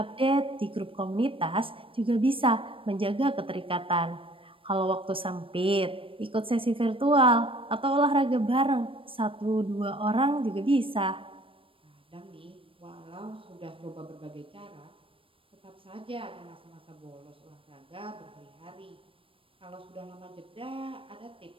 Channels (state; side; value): late; left; 0.26 ms